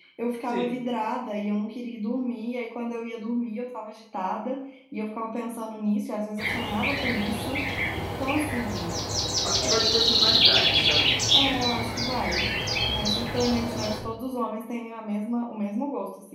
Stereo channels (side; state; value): both; identical; correlation 1.00